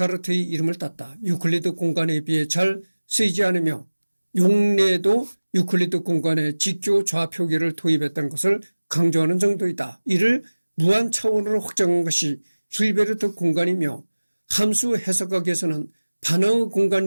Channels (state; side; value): inverted; both; correlation -1.00